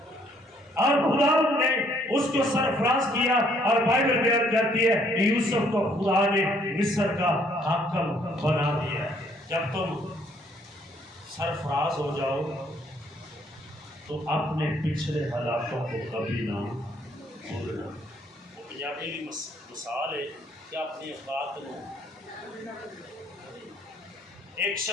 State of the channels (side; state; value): both; normal; correlation 0.65